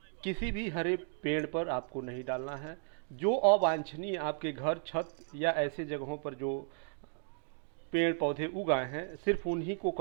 किसी भी हरे पेड़ पर आपको नहीं डालना है। जो अवांछनीय आपके घर, छत या ऐसे जगहों पर जो पेड़ पौधे उगाए हैं, सिर्फ उन्हीं को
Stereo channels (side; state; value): left; silent; digital silence